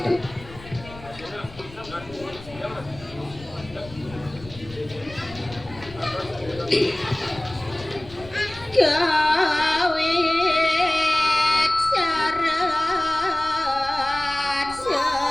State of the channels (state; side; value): noise; left; rumble, 18 dB below the sound